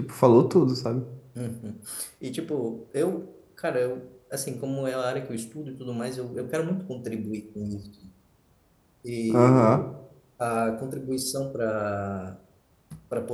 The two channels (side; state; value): both; identical; correlation 1.00